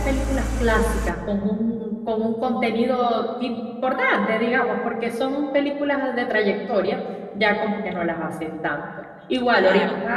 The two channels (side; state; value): both; identical; correlation 1.00